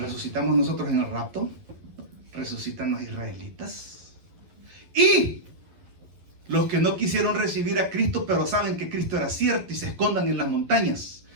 nosotros en el rapto, resucitan los israelitas, y los que no quisieron recibir a Cristo, pero saben que Cristo era cierto, y se escondan en las montañas,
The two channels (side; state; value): left; late; 11 ms